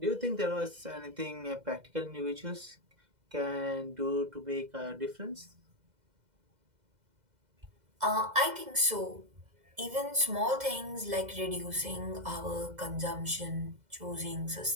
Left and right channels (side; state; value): left; late; 2.0 ms